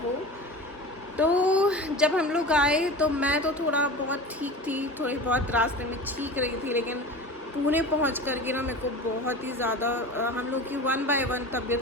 वो। तो जब हम लोग आए तो मैं तो थोड़ा बहुत ठीक थी, थोड़ी बहुत रास्ते में ठीक रही थी, लेकिन पुणे पहुंच कर के ना मेरे को बहुत ही ज़्यादा हम लोग की 1 बाय 1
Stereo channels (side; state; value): both; normal; correlation 0.32